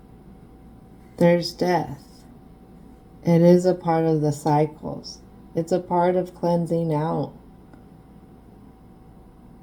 there's death. It is a part of the cycles. It's a part of cleansing out.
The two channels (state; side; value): identical; both; correlation 1.00